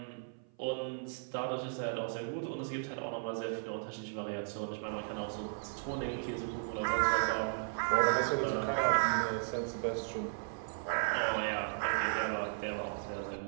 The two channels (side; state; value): left; silent; 54 dB below the other